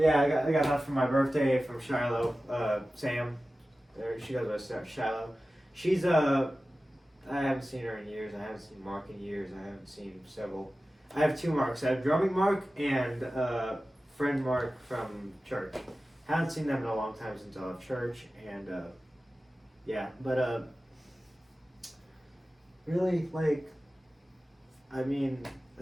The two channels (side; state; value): both; normal; correlation 0.95